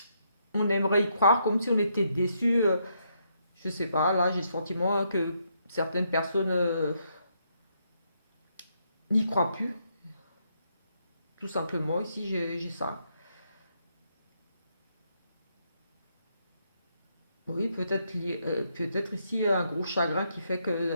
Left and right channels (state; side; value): inverted; both; correlation -0.76